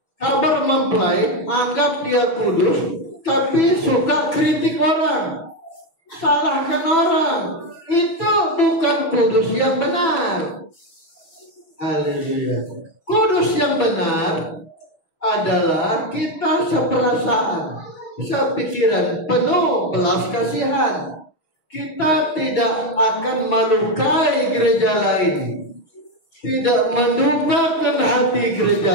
Kabar mempelai anggap dia kudus, tapi suka kritik orang, salahkan orang. Itu bukan kudus yang benar. Haleluya. Kudus yang benar adalah kita seperasaan, sepikiran, penuh belas kasihan. Kita tidak akan melukai gereja lain, tidak mendukakan hati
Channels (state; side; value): late; right; 6.0 ms